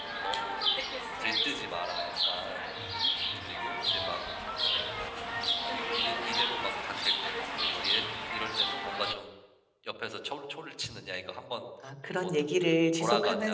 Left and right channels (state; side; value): identical; both; correlation 1.00